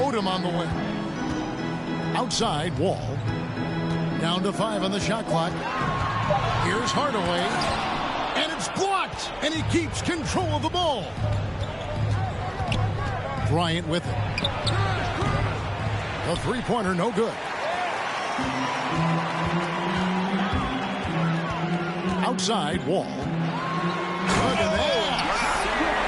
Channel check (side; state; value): both; identical; correlation 1.00